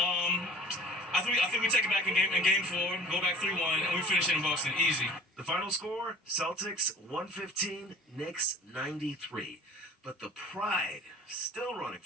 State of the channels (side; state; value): both; normal; correlation 0.45